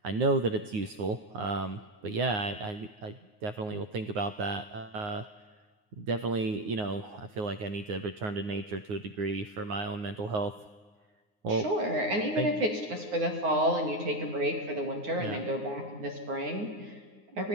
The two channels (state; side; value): late; left; 9.6 ms